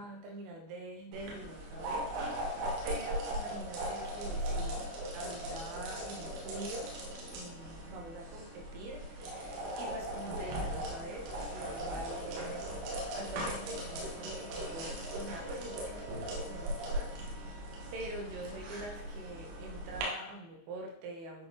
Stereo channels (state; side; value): late; left; 24 ms